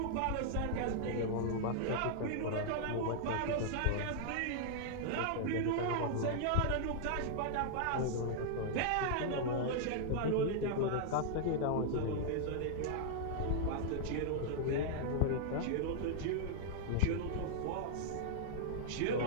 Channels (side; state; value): both; different; correlation -0.01